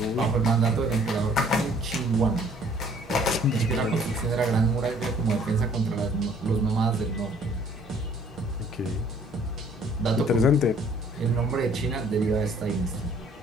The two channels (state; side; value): normal; both; correlation 0.57